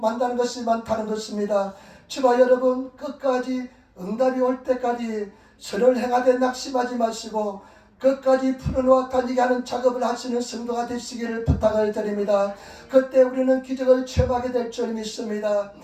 것이 많다는 것입니다. 저와 여러분, 끝까지 응답이 올 때까지 선을 행하되 낙심하지 마시고 끝까지 풀어놓아 다니게 하는 작업을 하시는 성도가 되시기를 부탁을 드립니다. 그때 우리는 기적을 체험하게 될 줄 믿습니다.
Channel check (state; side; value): identical; both; correlation 1.00